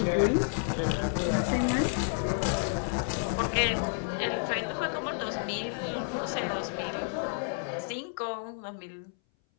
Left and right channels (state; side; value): silent; right; 58 dB below the other